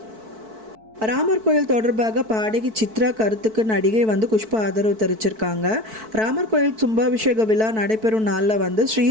ராமர் கோயில் தொடர்பாக பாடகி சித்ரா கருத்துக்கு நடிகை வந்து குஷ்பா ஆதரவு தெரிவிச்சிருக்காங்க. ராமர் கோயில் கும்பாபிஷேக விழா நடைபெறும் நாளில் வந்து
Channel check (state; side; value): late; left; 4.6 ms